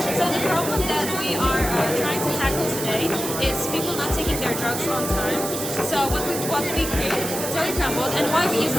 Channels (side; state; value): right; noise; hiss, 5 dB below the sound